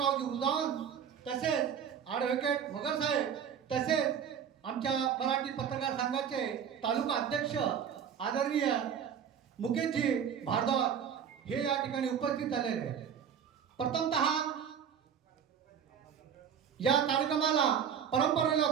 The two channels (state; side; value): quieter; left; 8.0 dB